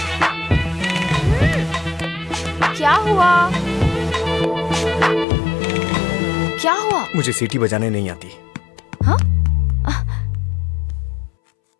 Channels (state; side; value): drops out; right; at 5.2 s